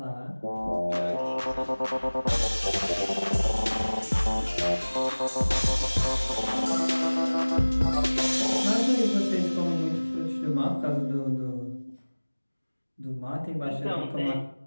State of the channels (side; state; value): both; inverted; correlation -1.00